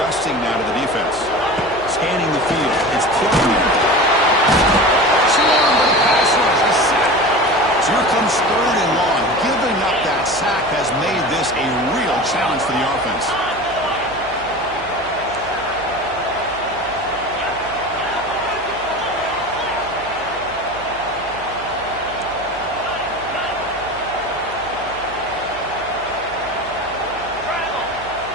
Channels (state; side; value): noise; right; hum, 20 dB below the sound